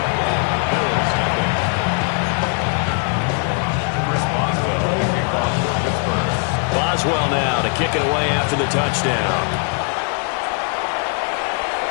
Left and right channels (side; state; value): right; quieter; 39.9 dB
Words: Boswell now to kick it away after the touchdown.